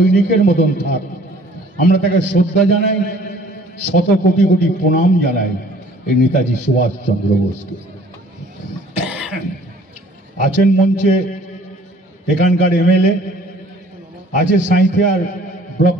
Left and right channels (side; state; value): both; normal; correlation 0.54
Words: মতন থাক। আমরা তাকে শ্রদ্ধা জানাই, শত কোটি কোটি প্রণাম জানাই এই নেতাজি সুভাষচন্দ্র বোসকে। আছেন মঞ্চে এখানকার এমএলএ, আছে সাঁইথিয়ার ব্লক